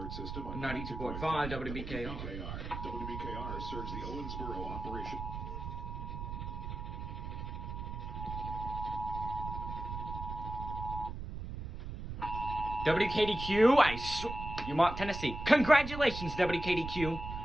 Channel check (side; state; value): right; noise; rumble, 7 dB below the sound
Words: system on 92.5 WBKR. WBKR serves the Owensboro operation. WKDQ, you want Tennessee. Congratulations, WKDQ.